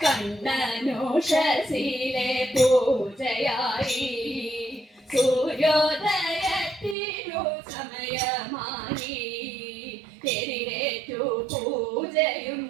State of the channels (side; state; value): left; drops out; at 7.0 s